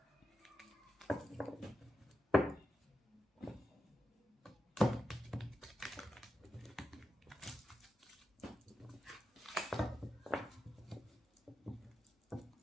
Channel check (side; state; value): both; normal; correlation 0.89